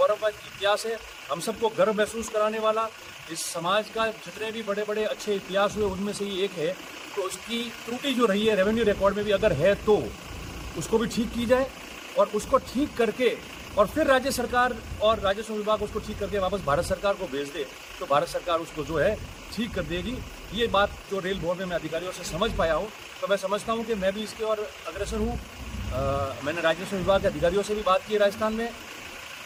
इतिहास है, हम सबको गर्व महसूस कराने वाला। इस समाज का जितने भी बड़े बड़े अच्छे इतिहास हुए उनमें से ये एक है। तो उसकी त्रुटि जो रही है रेवेन्यू रिकॉर्ड में भी अगर है तो उसको भी ठीक की जाए, और उसको ठीक करके और फिर राज्य सरकार और राजस्व विभाग उसको ठीक करके वापस भारत सरकार को भेज दे, तो भारत सरकार उसको जो है ठीक कर देगी। ये बात जो रेल बोर्ड में मैं अधिकारियों से समझ पाया हूँ, तो मैं समझता हूँ कि मैं भी इसके और अग्रसर हूँ। मैंने राजस्व विभाग के अधिकारियों से भी बात की राजस्थान में,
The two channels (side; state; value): both; identical; correlation 1.00